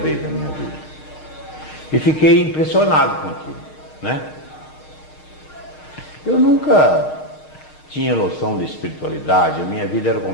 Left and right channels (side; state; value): right; late; 6.5 ms